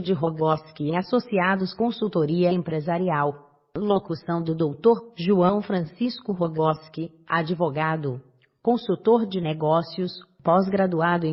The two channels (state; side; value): identical; both; correlation 1.00